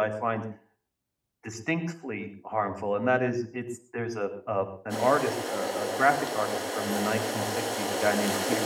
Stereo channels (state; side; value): identical; both; correlation 1.00